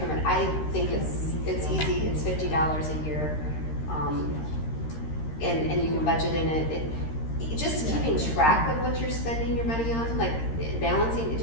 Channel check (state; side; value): late; right; 13 ms